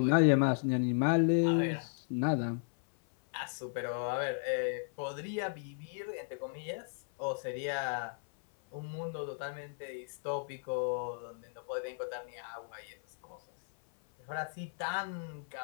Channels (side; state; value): right; silent; 54 dB below the other